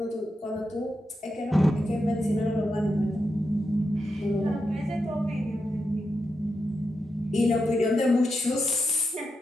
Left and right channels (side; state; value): both; normal; correlation 0.86